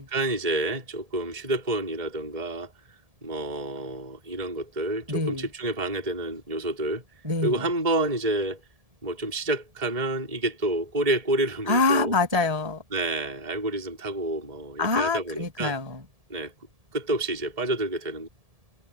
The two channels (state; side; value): late; left; 1.7 ms